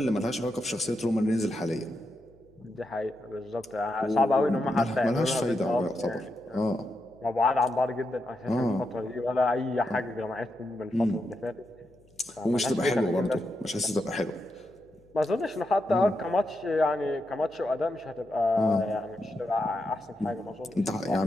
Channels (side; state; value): left; noise; hum, 30 dB below the sound